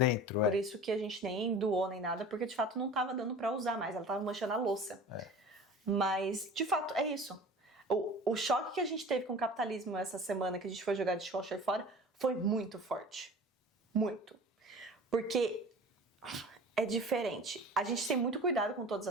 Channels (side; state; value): both; normal; correlation 0.40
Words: Por isso que a gente nem doou nem nada, porque de fato não tava dando pra usar mais, ela tava manchando a louça. Mas, de fato, é isso. O choque que a gente teve com o capitalismo essa semana que a gente foi jogar dishwasher fora foi muito forte. Muito. Porque é diferente. A gente tem muito cuidado com todas